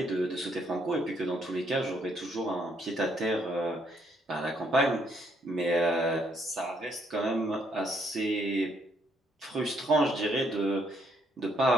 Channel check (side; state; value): both; normal; correlation 0.71